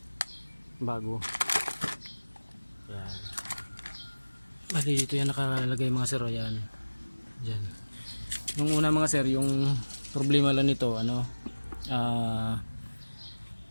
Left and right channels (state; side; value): inverted; both; correlation -1.00